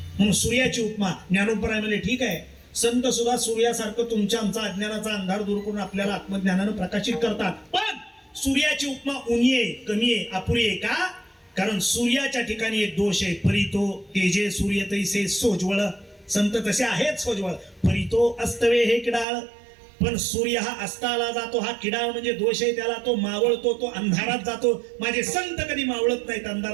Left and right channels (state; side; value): drops out; left; at 19.2 s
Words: म्हणून सूर्याची उपमा ज्ञानोपराय म्हणजे ठीक आहे. संत सुद्धा सूर्यासारखं तुमच्या आमचा अज्ञानाचा अंधार दूर करून आपल्याला आत्मज्ञानानं प्रकाशित करतात. पण सूर्याची उपमा उणी आहे, कमी आहे, अपुरी आहे. का. कारण सूर्याच्या ठिकाणी एक दोष आहे. परितो तेजे सूर्य तैसे सोज्वळ. संत तसे आहेत सोज्वळ. परितो अस्तवे हे किडाळ. पण सूर्य हा अस्ताला जातो, हा किडाळ म्हणजे दोष आहे त्याला. तो मावळतो, तो अंधारात जातो. माझे संत कधी मावळत नाहीत,